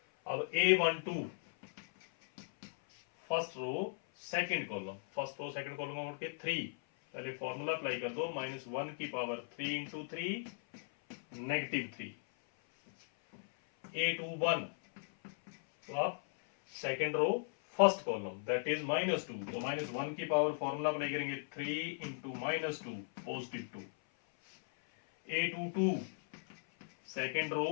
अब A12 first row second column, first row second column में उठ के 3, पहले फॉर्मूला अप्लाई कर दो, -1 की पावर 3 इंटू 3 -3। A21 तो आप second row first column that is -2 तो -1 की पावर फॉर्मूला अप्लाई करेंगे 3 into -2 +2। A22 second row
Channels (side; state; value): right; silent; 53 dB below the other